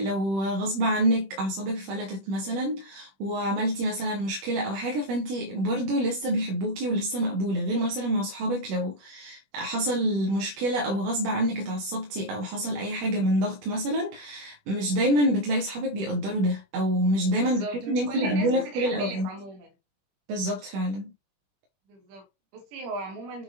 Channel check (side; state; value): left; late; 21 ms